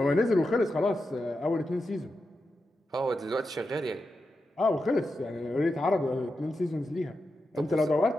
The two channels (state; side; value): normal; both; correlation 0.89